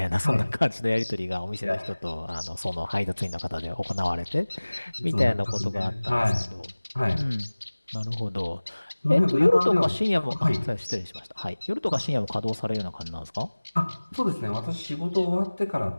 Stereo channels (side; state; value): both; inverted; correlation -1.00